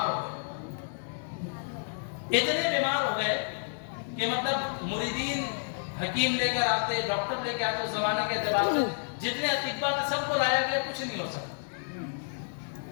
ہو گئے، اتنے بیمار ہو گئے کہ مطلب مریدین حکیم لے کر آتے، ڈاکٹر لے کے آتے، اس زمانے کے اعتبار سے جتنے اطباء تھے سب کو لایا گیا، کچھ نہیں ہو سکتا۔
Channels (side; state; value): right; silent; digital silence